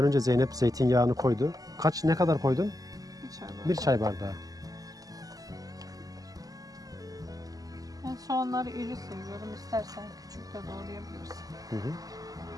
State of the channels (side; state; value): left; late; 0.17 ms